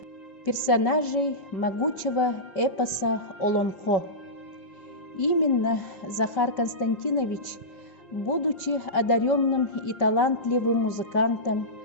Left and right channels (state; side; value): late; right; 5.2 ms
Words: персонажей могучего эпоса Олонхо. Именно Захар Константинович, будучи одаренным и талантливым музыкантом,